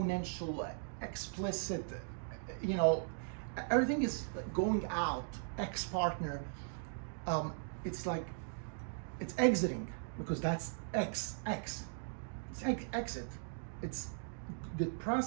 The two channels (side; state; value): left; silent; digital silence